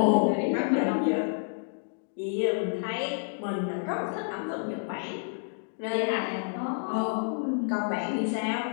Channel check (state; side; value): silent; right; digital silence